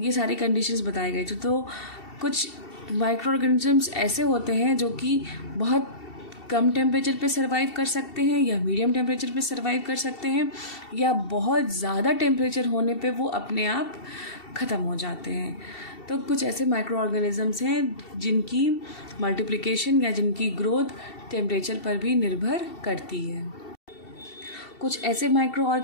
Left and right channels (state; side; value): late; right; 2.7 ms